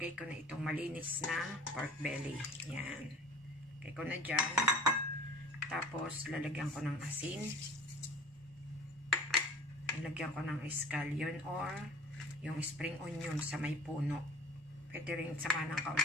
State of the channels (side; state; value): both; normal; correlation 0.44